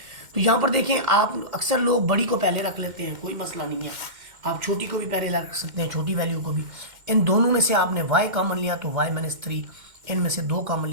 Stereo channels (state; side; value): late; left; 2.1 ms